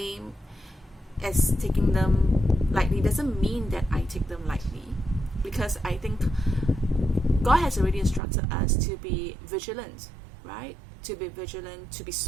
as taking them lightly. Doesn't mean that I take them lightly, because I think God has already instructed us to be vigilant, right? To be vigilant, to be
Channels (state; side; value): drops out; left; at 8.2 s